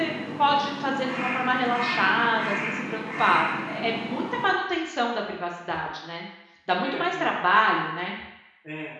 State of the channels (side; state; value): both; identical; correlation 1.00